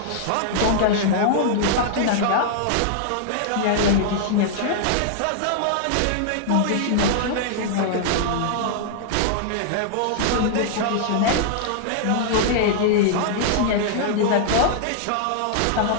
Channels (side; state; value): both; different; correlation -0.01